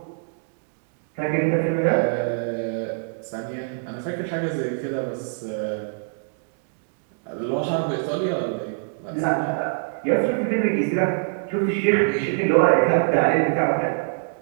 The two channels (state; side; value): silent; left; digital silence